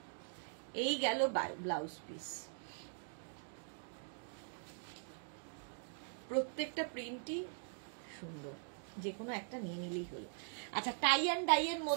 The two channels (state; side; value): silent; left; digital silence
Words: এই গেল ব্লাউজ পিস। প্রত্যেকটা প্রিন্টই সুন্দর, যে কোনো একটা নিয়ে নিলেই হলো। আচ্ছা, টাই অ্যান্ড ডাই এর